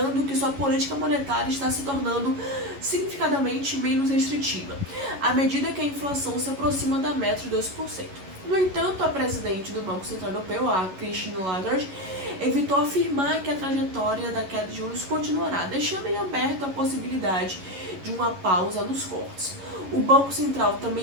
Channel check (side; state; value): left; late; 11 ms